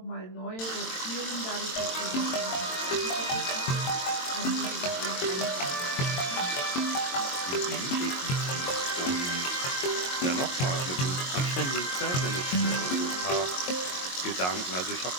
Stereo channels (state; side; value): late; right; 22 ms